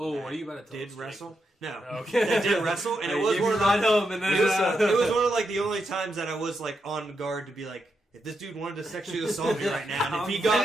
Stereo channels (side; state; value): both; normal; correlation 0.84